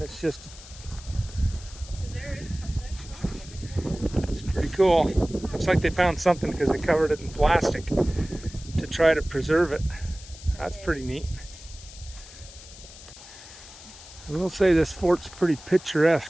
It's just... It's pretty cool. Looks like they found something because they covered it in plastic to try to preserve it. That's pretty neat. I will say this fort's pretty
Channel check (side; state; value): left; noise; hiss, 18 dB below the sound